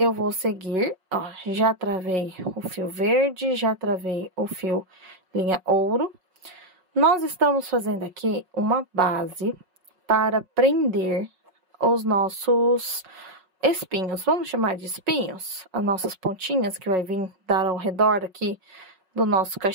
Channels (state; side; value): late; left; 5.4 ms